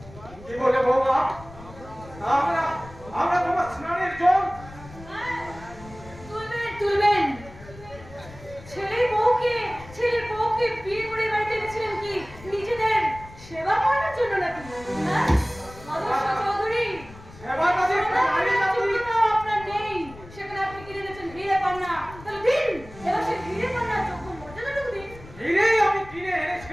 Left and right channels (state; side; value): noise; left; rumble, 18 dB below the sound